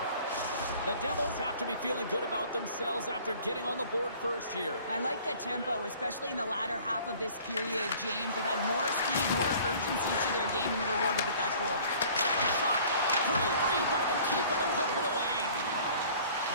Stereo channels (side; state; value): both; inverted; correlation -0.51